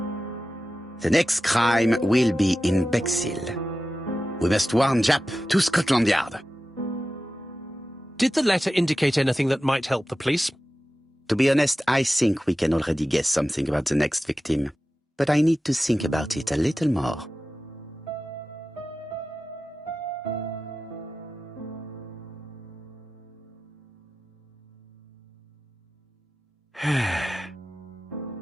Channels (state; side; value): normal; both; correlation 0.94